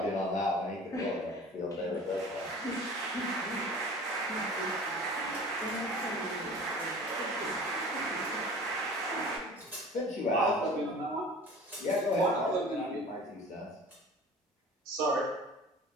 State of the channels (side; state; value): both; normal; correlation 0.42